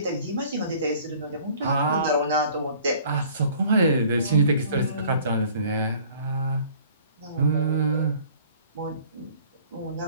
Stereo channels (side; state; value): both; inverted; correlation -0.52